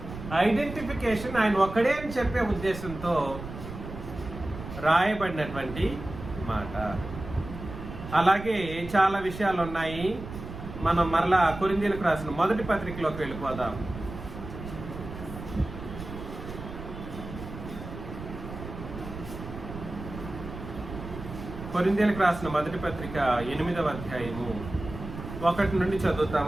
ఐడెంటిఫికేషన్, ఆయన ఒక్కడే అని చెప్పే ఉద్దేశంతో రాయబడినటువంటి మాట. అలాగే చాలా విషయాలు ఉన్నాయి. మనం మరలా కొరింథీయులకు రాసిన మొదటి పత్రికలోకి వెళ్ళిపోదాం. కొరింథీయులకు రాసిన మొదటి పత్రిక 8వ అధ్యాయము 1 నుండి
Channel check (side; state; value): right; noise; rumble, 11 dB below the sound